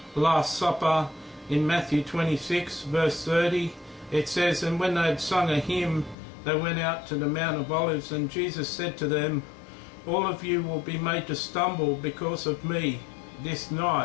Last Supper, in Matthew 26 verse 30, it says, "And when they had sung a hymn, they went out to the Mount of Olives, and Jesus said to them, All of you will be made to stumble because of me this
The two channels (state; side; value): drops out; right; at 6.2 s